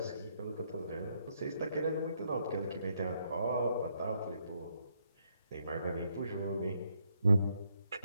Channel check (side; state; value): both; inverted; correlation -0.75